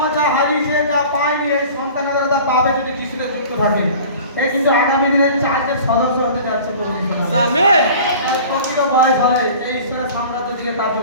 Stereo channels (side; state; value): both; inverted; correlation -0.42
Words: মা যা হারিয়েছে, যা পায়নি, এই সন্তানের দ্বারা তা পাবে যদি যিশুতে যুক্ত থাকে। এই কিন্তু আগামী দিনে চার্চের সদস্য হতে যাচ্ছে প্রভু যিশু নামে। আমেন। আর প্রকৃত বয়স হলে এই ঈশ্বরের সাম্রাজ্য দিকে